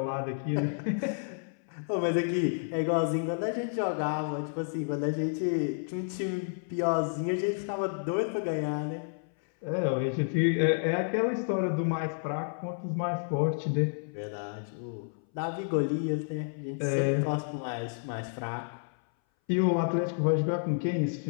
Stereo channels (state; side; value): silent; right; 58 dB below the other